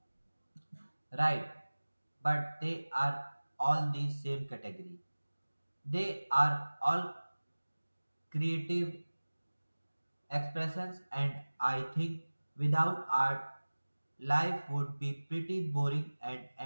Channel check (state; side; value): inverted; both; correlation -1.00